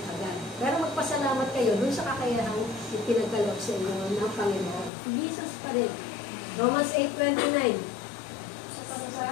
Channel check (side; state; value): right; drops out; at 4.9 s